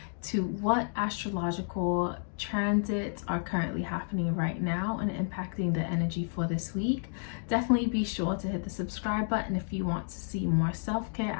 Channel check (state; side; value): silent; right; digital silence